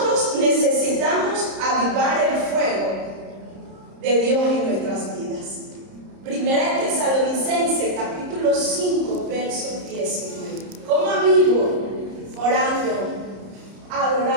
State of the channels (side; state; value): left; late; 30 ms